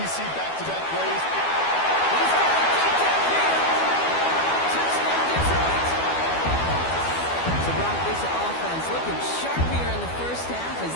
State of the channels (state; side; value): late; right; 12 ms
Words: you see back-to-back plays. He's got it deep downfield. Touchdown, Detroit. So, Brock, this offense looking sharp here in the first half as